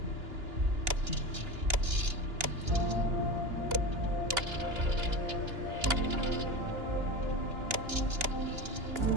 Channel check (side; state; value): left; late; 2.9 ms